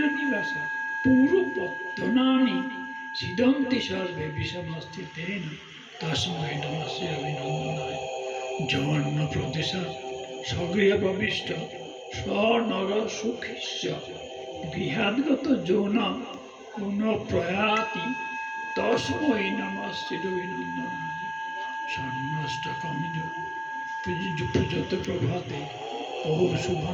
পূর্বপত্তনানি সিদন্তি সর্বে বিষমস্তিতেন তস্मै নমঃ শিরবিনন্দনায় যৌন প্রদেশা স্বগৃহ প্রবিষ্ট স্বনর সুখিস্য গৃহাদ্গত যৌন কোন প্রয়াতি তস্मै নমঃ শিরবিনন্দনায় স্বর্ণষ্টকমিজ প্রযত প্রভাতে ও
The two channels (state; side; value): identical; both; correlation 1.00